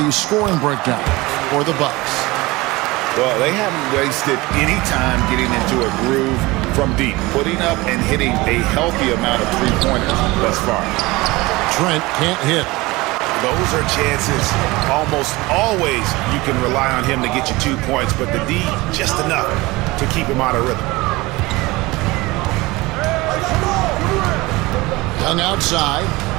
scoring breakdown for the Bucks. Well, they haven't wasted any time getting into a groove from deep, putting up and hitting a healthy amount of three-pointers thus far. Trent can't hit. Those are chances. Almost always you can rely on him to get you 2 points, but the D just enough to keep him out of rhythm. Young outside.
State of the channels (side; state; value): left; quieter; 21.5 dB